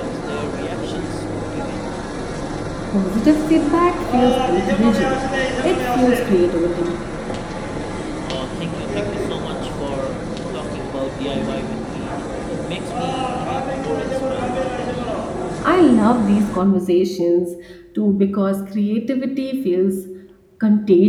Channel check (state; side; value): identical; both; correlation 1.00